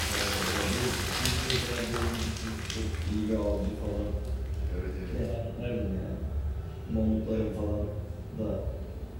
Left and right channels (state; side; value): identical; both; correlation 1.00